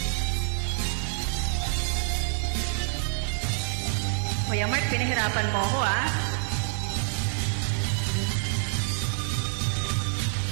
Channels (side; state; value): left; silent; digital silence